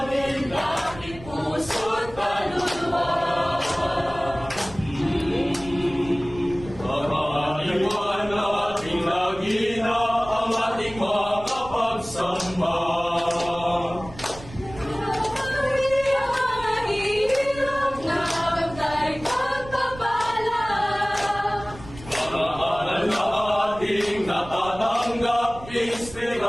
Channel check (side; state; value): right; noise; rumble, 16 dB below the sound